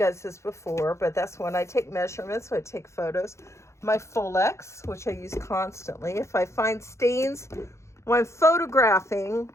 this before, but that's when I take measurements, so I take photos. My Folex, which I use constantly. If I find stains when I'm photographing,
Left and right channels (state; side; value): late; right; 0.14 ms